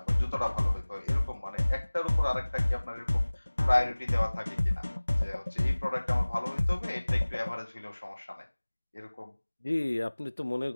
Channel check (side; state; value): both; inverted; correlation -1.00